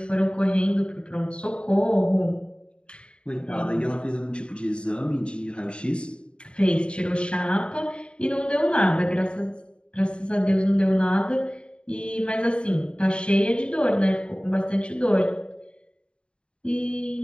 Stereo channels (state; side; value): late; right; 0.054 ms